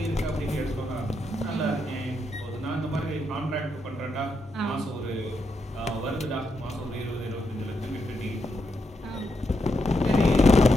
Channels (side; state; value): both; normal; correlation 0.82